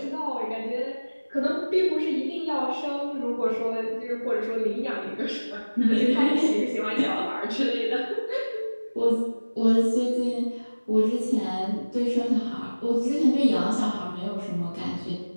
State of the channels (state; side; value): inverted; both; correlation -1.00